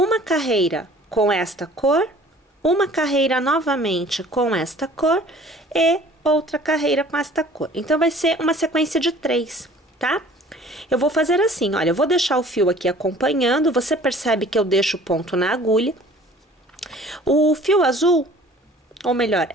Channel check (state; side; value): normal; both; correlation 0.50